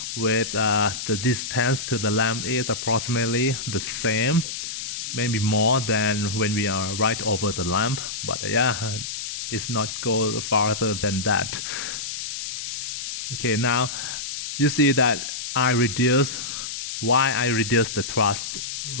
with the distance to the lamp is approximately the same, maybe more than when we are right over the lamp, but yeah, it's not go farther than that. Okay, now you see that why I reduce the thrust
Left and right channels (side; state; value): left; noise; hiss, 6 dB below the sound